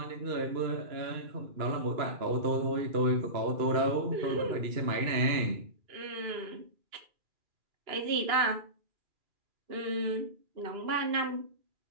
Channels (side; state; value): left; late; 2.9 ms